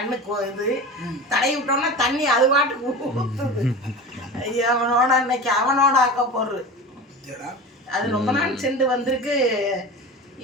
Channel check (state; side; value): normal; both; correlation 0.31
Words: இது தடவி விட்டோம்னா தண்ணி அது பாட்டுக்கு ஊற்றுது. அவனோட இன்னைக்கு அவனோட ஆக்க போடுறது. அது ரொம்ப நாள் சென்று வந்திருக்கு.